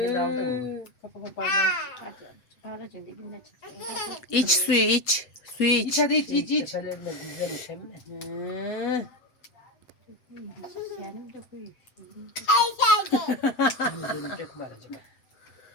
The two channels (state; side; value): late; right; 8.0 ms